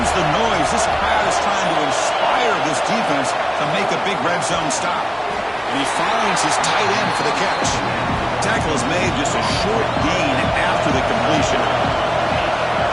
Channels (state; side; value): identical; both; correlation 1.00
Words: the noise. This crowd is trying to inspire this defense to make a big red zone stop. And he finds his tight end for the catch. Tackle is made, just a short gain after the completion.